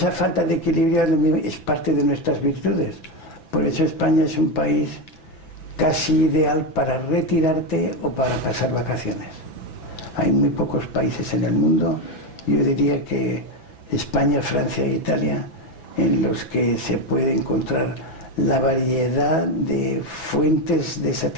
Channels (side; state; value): right; late; 6.0 ms